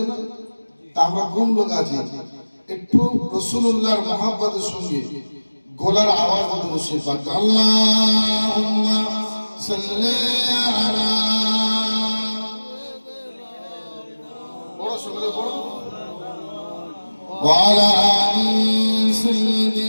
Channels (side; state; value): both; inverted; correlation -1.00